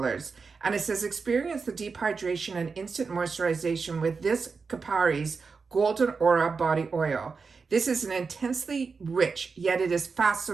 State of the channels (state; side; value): quieter; left; 4.9 dB